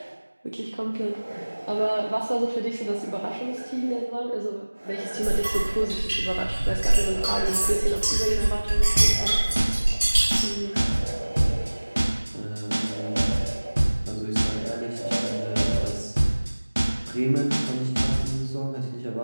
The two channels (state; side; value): inverted; both; correlation -1.00